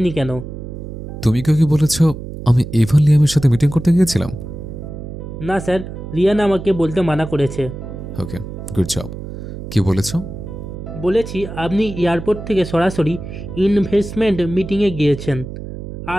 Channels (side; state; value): right; noise; hum, 10 dB below the sound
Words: কেন। তুমি কেউ কি বলেছ আমি ইভান লিয়ামের সাথে মিটিং করতে গিয়েছিলাম? না স্যার, রিয়ানা আমাকে বলতে মানা করেছে। ওকে, গুড জব। কি বলেছ? বলেছি আপনি এয়ারপোর্ট থেকে সরাসরি ইনভেস্টমেন্ট মিটিংয়ে গিয়েছেন